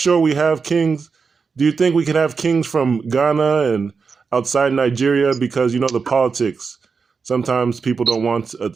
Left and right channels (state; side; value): quieter; left; 5.2 dB